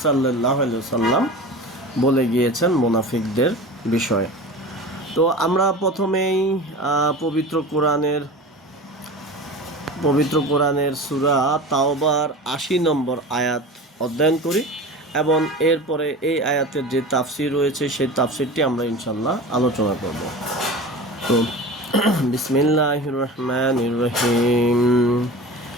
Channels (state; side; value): normal; both; correlation 0.33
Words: সাল্লাল্লাহু আলাইহি ওয়াসাল্লাম বলে গিয়েছেন মুনাফিকদের বিষয়ে। তো আমরা প্রথমেই পবিত্র কোরআনের সূরা তাওবার ৮০ নম্বর আয়াত অধ্যয়ন করি এবং এরপরে এই আয়াতের যে তাফসির রয়েছে সেই তাফসিরটি আমরা ইনশাআল্লাহ আলোচনা করব। তো বিসমিল্লাহির রহমানির রহিম।